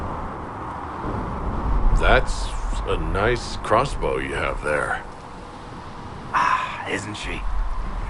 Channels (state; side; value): identical; both; correlation 1.00